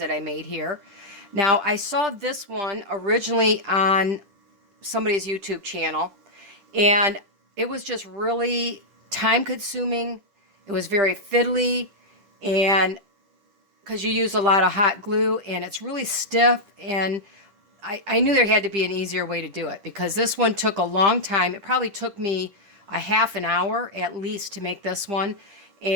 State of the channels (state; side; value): late; left; 10 ms